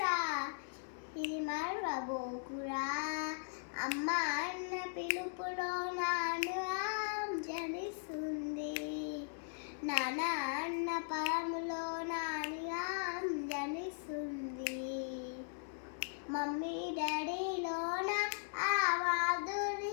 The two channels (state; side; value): silent; right; digital silence